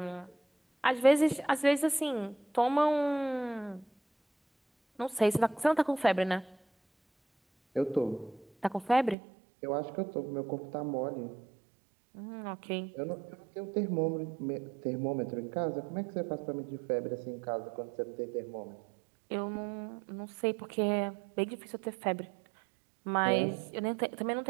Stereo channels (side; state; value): left; drops out; at 9.2 s